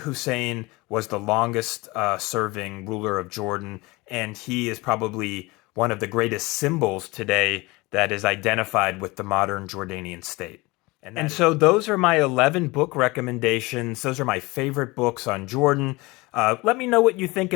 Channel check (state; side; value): quieter; right; 23.2 dB